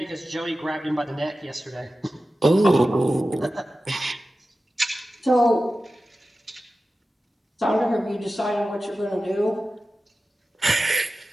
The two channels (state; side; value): normal; both; correlation 0.94